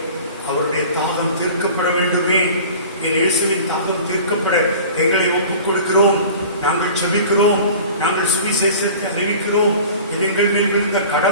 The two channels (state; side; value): inverted; both; correlation -0.41